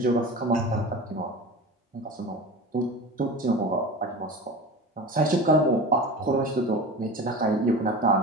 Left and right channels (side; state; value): both; normal; correlation 0.32